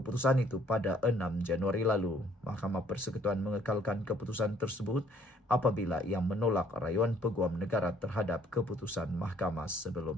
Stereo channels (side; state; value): both; normal; correlation 0.62